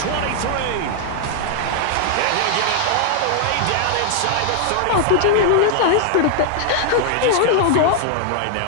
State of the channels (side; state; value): both; different; correlation 0.00